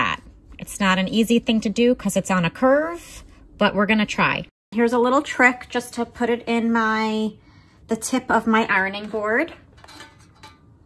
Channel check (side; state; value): both; identical; correlation 1.00